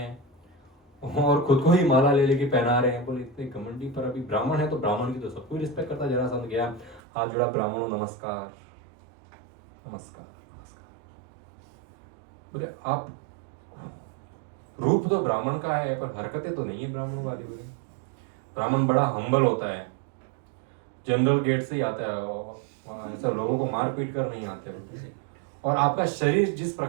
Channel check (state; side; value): drops out; left; at 7.0 s